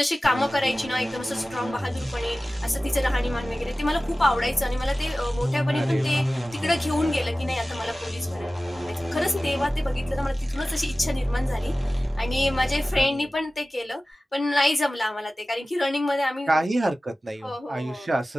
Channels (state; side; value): normal; both; correlation 0.96